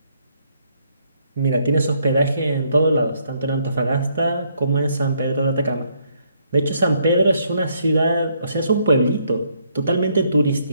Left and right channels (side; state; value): both; inverted; correlation -0.71